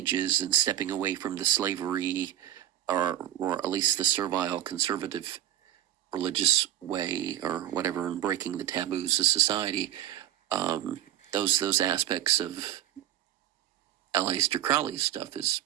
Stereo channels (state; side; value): quieter; left; 12.3 dB